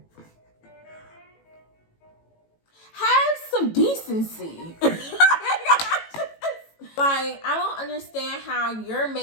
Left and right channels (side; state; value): right; late; 18 ms